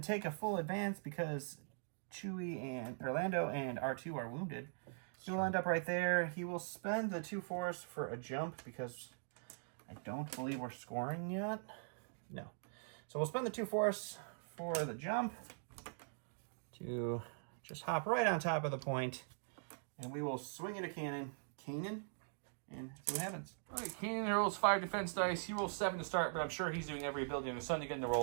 take a full advance because Chewie and Orlando and R2 are wounded. He will end up right there. He will spend the 2 force for a jump because I don't believe we're scoring yet. No. So we'll spend the 2 force for the jump to just hop right on top of the point, and we will swing it a Kanan, and see what happens. All right, Kanan rolls 5 defense dice. He rolls 7 to start, but I'm sure he's doing every ability in the sun to get him to roll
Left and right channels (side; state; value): left; silent; digital silence